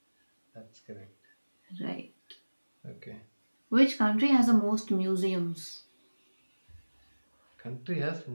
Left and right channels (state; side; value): inverted; both; correlation -1.00